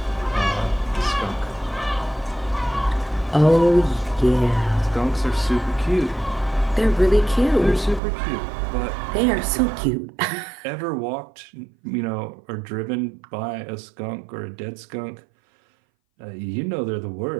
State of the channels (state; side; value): drops out; left; at 8.0 s